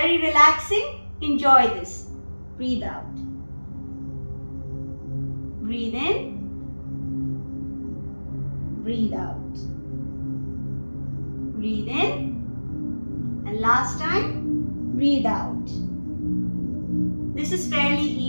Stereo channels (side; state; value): both; inverted; correlation -1.00